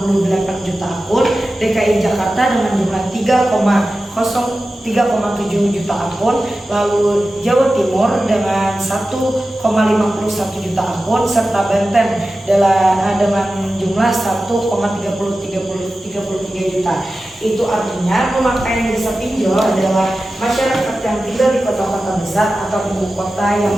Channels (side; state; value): both; normal; correlation 0.94